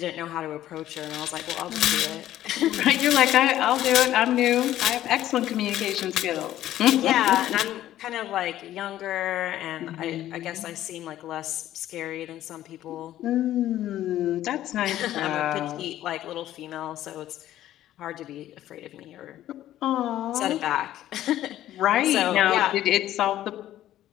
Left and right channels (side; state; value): right; quieter; 13.1 dB